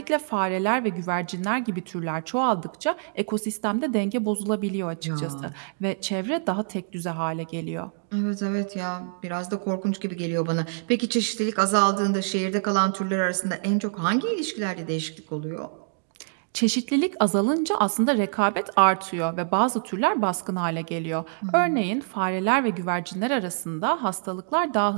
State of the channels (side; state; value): left; silent; digital silence